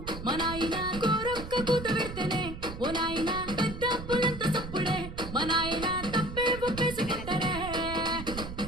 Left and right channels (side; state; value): right; noise; rumble, 9 dB below the sound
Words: మా నాయన కోరొక్క కూత పెడితేనే ఓ నాయన పెద్ద పులంత సప్పుడే మా నాయన తప్పే ఒప్పేసి గిట్టరే.